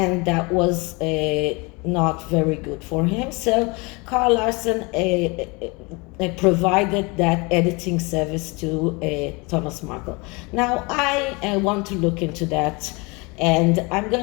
that was not very good for him. So Karl Larsen provided that editing service to Thomas Markle. Now I want to look into that, and I'm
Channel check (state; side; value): quieter; right; 27.7 dB